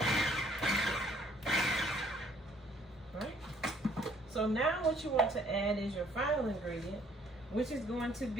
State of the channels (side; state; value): both; normal; correlation 0.62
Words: So now what you want to add is your final ingredient, which is going to